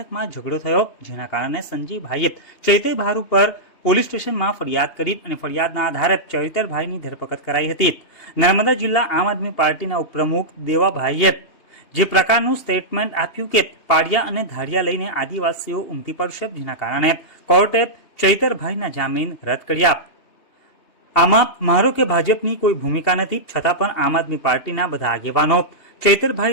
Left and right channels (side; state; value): right; late; 2.8 ms